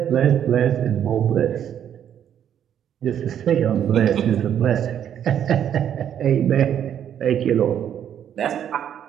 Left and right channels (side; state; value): left; quieter; 9.6 dB